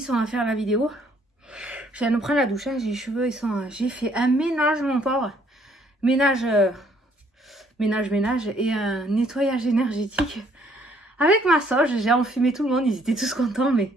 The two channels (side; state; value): both; normal; correlation 0.65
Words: on va faire la vidéo. Je viens de prendre la douche, hein, j'ai les cheveux, ils sont... j'ai fait un ménage, mon pauvre. Ménage et un nettoyage énergétique. Avec ma sauge, j'ai enfumé tout le monde, ils étaient tous contents, mais